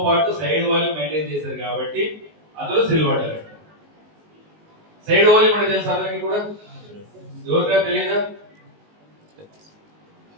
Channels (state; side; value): late; left; 19 ms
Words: పాటు సైడ్ వాల్యూమ్ మెయింటైన్ చేశారు కాబట్టి అతను సిల్వర్ డైరెక్టర్. సైడ్ వాల్యూమ్ అంటే తెలుసు అందరికి కూడా? ఎవరికైనా తెలియదా?